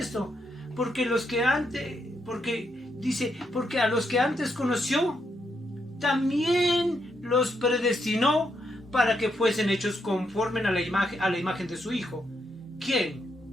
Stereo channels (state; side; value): normal; both; correlation 0.79